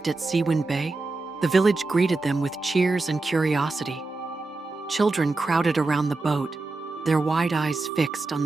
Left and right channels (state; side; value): quieter; left; 3.4 dB